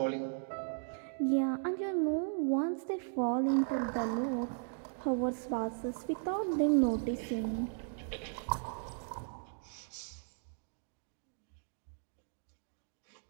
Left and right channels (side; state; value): left; silent; digital silence